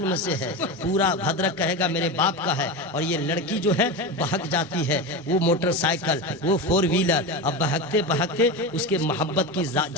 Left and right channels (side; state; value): both; normal; correlation 0.21